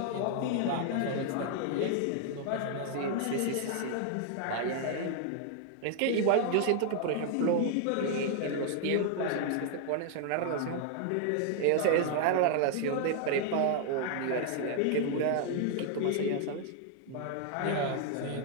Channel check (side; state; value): both; different; correlation 0.00